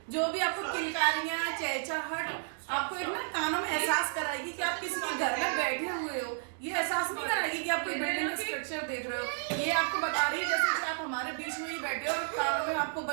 जो भी आपको किलकारियाँ, चहचहाहट आपको एक ना कानों में एहसास कराएगी कि आप किसी के घर में बैठे हुए हो। ये एहसास नहीं कराएगी कि आप कोई बिल्डिंग का स्ट्रक्चर देख रहे हो। ये आपको बता रही है जैसे कि आप हमारे बीच में ही बैठे हो और कानों में आपको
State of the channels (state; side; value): silent; left; digital silence